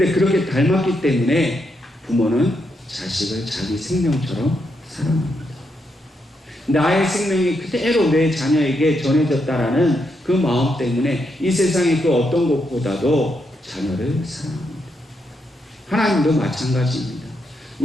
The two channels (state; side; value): normal; both; correlation 0.80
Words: 그렇게 닮았기 때문에 부모는 자식을 자기 생명처럼 사랑합니다. 나의 생명이 그대로 내 자녀에게 전해졌다라는 그 마음 때문에 이 세상의 그 어떤 것보다도 자녀를 사랑합니다. 하나님도 마찬가지입니다.